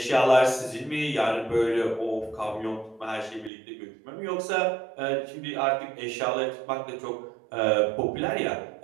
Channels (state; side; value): drops out; left; at 3.5 s